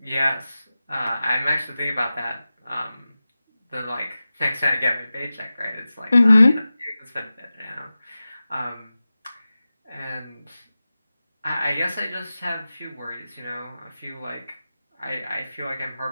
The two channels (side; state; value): both; inverted; correlation -0.95